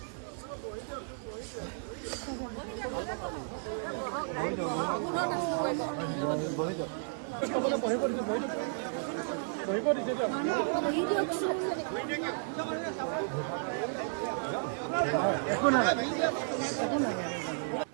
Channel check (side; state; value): left; silent; digital silence